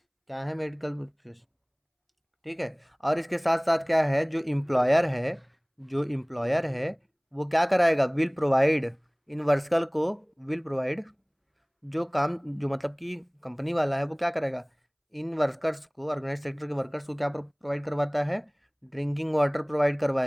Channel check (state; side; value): identical; both; correlation 1.00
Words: क्या है मेडिकल बेनिफिट्स, ठीक है। और इसके साथ साथ क्या है, जो एम्प्लॉयर है वो क्या कराएगा, विल प्रोवाइड इन वर्कर्स को, विल प्रोवाइड, जो काम जो मतलब कि कंपनी वाला है वो क्या करेगा, इन वर्कर्स को, ऑर्गेनाइज सेक्टर के वर्कर्स को क्या प्रोवाइड करवाता है, ड्रिंकिंग वाटर प्रोवाइड